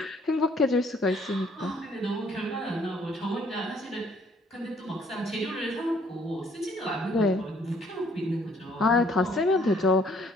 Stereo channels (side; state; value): both; normal; correlation 0.63